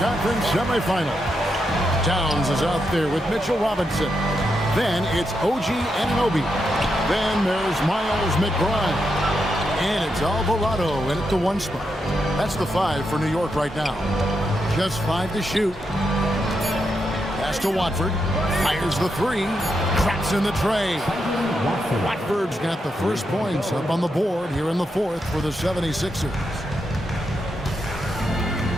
semifinal. Towns is out there with Mitchell Robinson. Then it's OG Anunoby. Then there's Miles McBride. And it's Alvarado in at the 1 spot. That's the 5 for New York right now. Just 5 to shoot. Pass to Watford. Fires the 3. Cracks in the tray. Watford's got the first points up on the board here in the 4th for the 76ers.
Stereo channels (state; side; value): normal; both; correlation 0.84